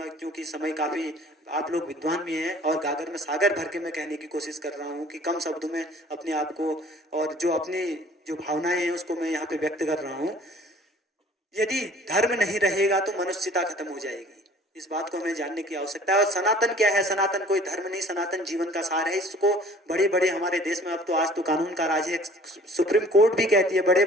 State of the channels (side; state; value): both; normal; correlation 0.51